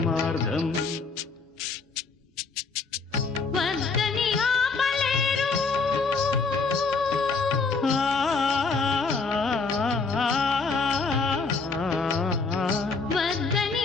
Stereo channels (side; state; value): right; quieter; 4.4 dB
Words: వద్దని ఆపలేరు వద్దని